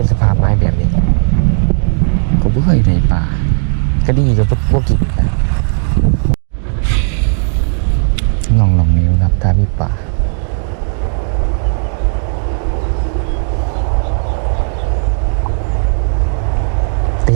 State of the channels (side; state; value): left; silent; 60 dB below the other